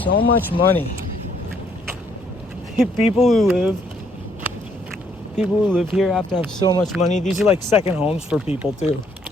So much money. People who live here have to have so much money. These are like second homes for people too.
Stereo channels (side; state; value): both; normal; correlation 0.68